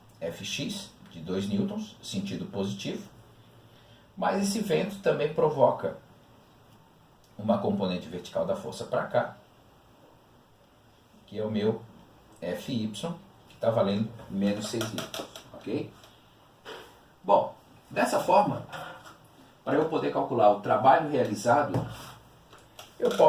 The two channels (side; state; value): both; identical; correlation 1.00